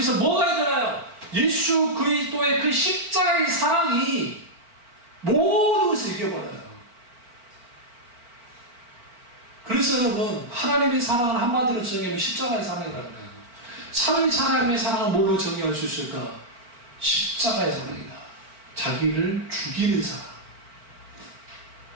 뭐가 일어나요? 예수 그리스도의 그 십자가의 사랑이 모든 것을 이겨버려요. 그래서 여러분, 하나님의 사랑을 한마디로 정의하면 십자가의 사랑이라는 거예요. 하나님의 사랑을 뭘로 정의할 수 있을까? 십자가의 사랑이다. 자기를 죽이는 사랑.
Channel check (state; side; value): late; left; 4.4 ms